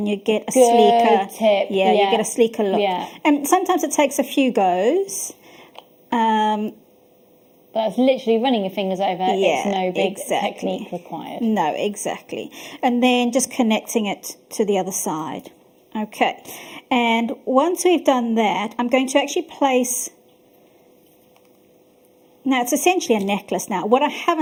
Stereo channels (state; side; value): identical; both; correlation 1.00